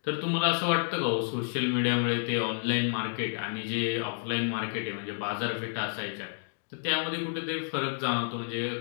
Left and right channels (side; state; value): right; silent; digital silence